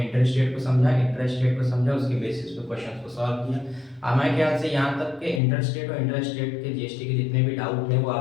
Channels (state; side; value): drops out; right; at 5.4 s